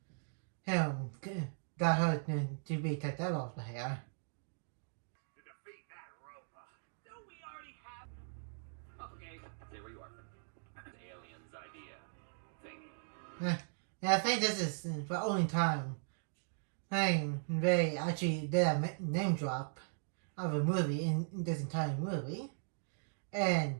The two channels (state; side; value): silent; left; digital silence